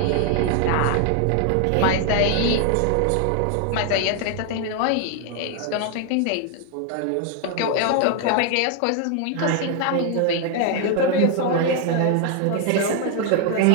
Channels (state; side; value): different; both; correlation 0.00